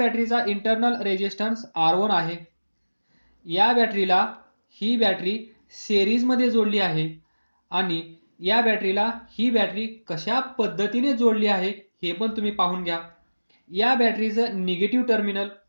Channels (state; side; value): inverted; both; correlation -1.00